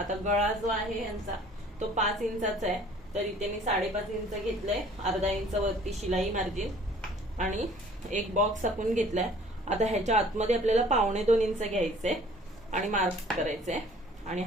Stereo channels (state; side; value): normal; both; correlation 0.53